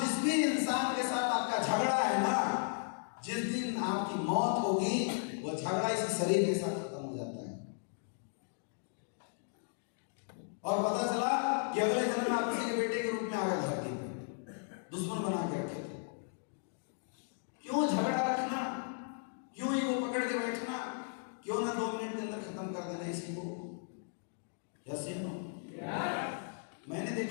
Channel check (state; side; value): silent; right; digital silence